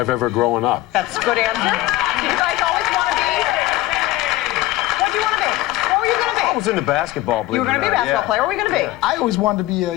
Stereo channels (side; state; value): right; quieter; 16.4 dB